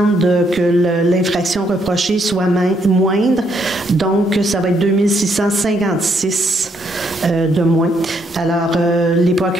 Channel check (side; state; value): both; normal; correlation 0.73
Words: que l'infraction reprochée soit moindre. Donc, ça va être 2656 de moins. Alors, les